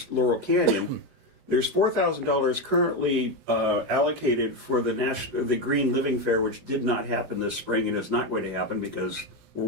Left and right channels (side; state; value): left; late; 4.9 ms